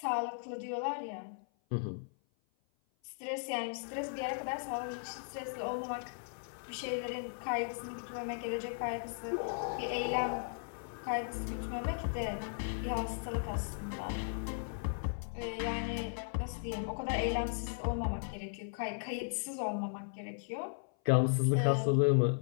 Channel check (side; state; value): right; silent; 53 dB below the other